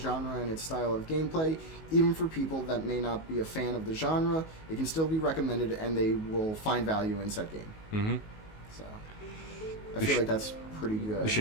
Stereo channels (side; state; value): right; late; 19 ms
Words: and its style of gameplay. Even for people that may not be a fan of the genre, it can still be recommended, and they will find value in said game. Mm-hmm. So, I feel like that's pretty good. We